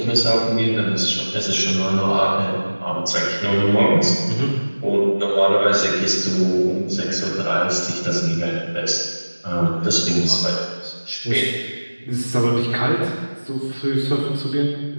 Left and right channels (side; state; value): both; inverted; correlation -1.00